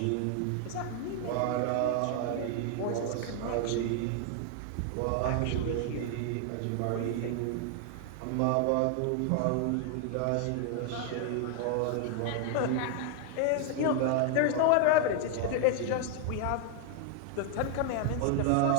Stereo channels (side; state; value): both; different; correlation 0.00